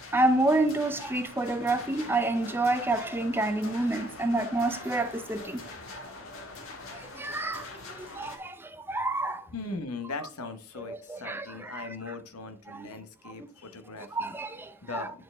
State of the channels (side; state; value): both; normal; correlation 0.65